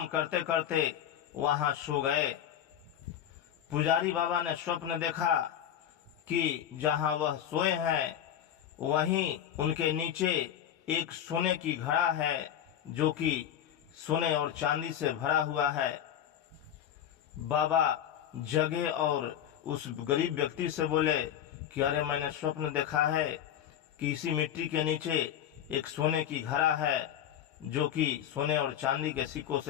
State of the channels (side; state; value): right; quieter; 10.1 dB